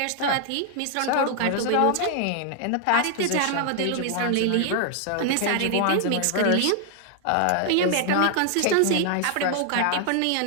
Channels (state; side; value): different; both; correlation 0.00